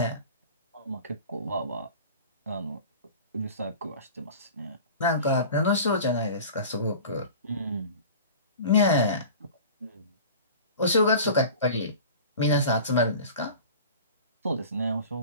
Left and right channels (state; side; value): inverted; both; correlation -0.39